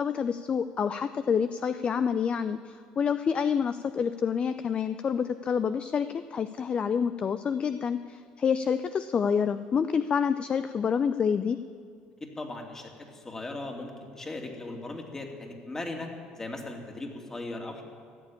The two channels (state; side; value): quieter; right; 6.2 dB